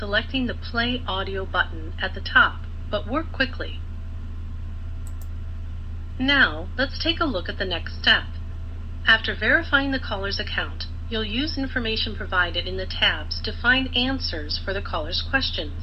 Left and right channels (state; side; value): identical; both; correlation 1.00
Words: the Play Audio button at the top, but work quickly. Now, let's take a look at the next step. After verifying the caller's account, you'll use information provided in the tabs to find answers for the caller's